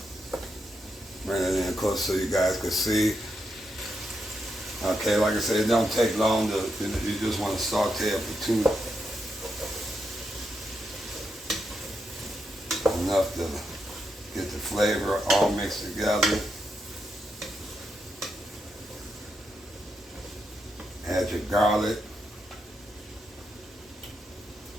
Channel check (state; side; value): normal; both; correlation 0.83